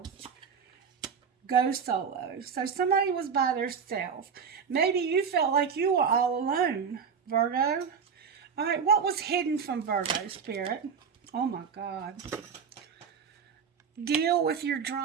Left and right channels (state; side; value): quieter; left; 6.4 dB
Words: Go solo. So somebody was by themselves. Maybe you felt like you were all alone, Virgo. All right, what was hidden from Virgo, Spirit? Oh, my God. Deal with your